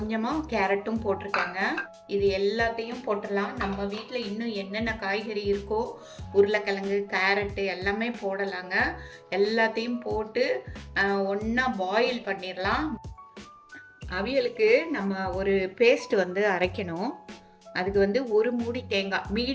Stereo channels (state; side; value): identical; both; correlation 1.00